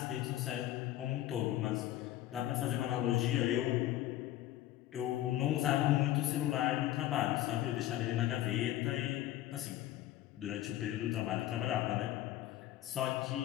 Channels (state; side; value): quieter; right; 14.0 dB